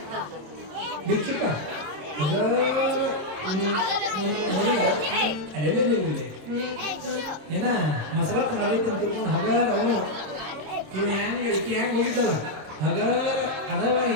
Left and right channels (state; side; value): late; left; 26 ms